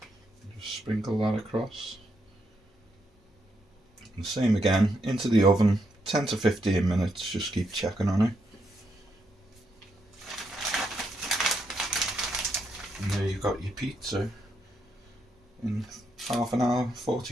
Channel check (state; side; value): normal; both; correlation 0.79